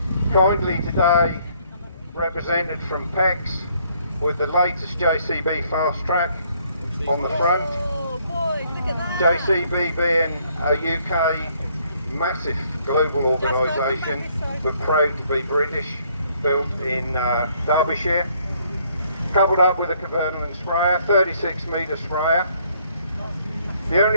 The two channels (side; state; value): both; inverted; correlation -0.66